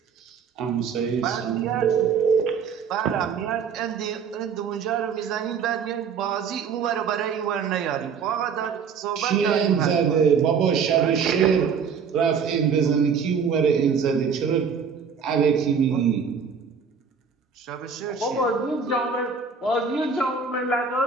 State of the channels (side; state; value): left; quieter; 6.2 dB